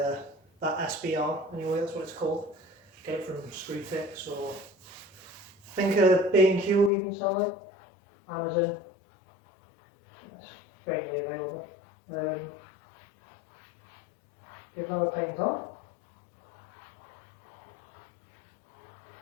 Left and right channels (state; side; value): drops out; right; at 6.9 s